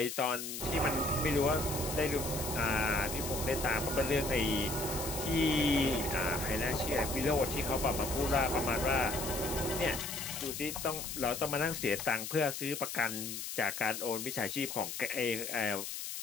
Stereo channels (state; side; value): noise; left; hiss, 6 dB below the sound